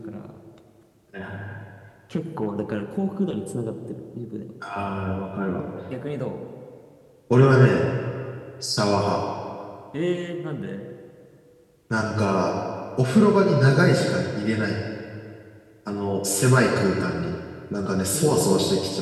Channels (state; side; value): identical; both; correlation 1.00